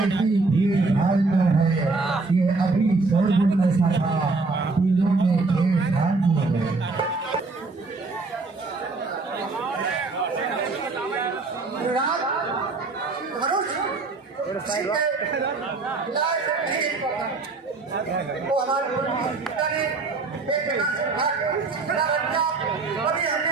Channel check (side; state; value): left; quieter; 3.8 dB